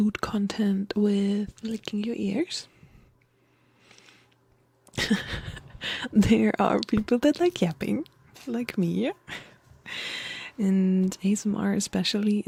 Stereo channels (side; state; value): both; identical; correlation 1.00